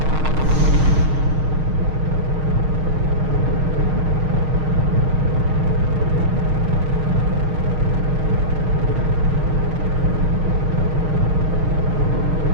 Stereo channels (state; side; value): late; left; 6.4 ms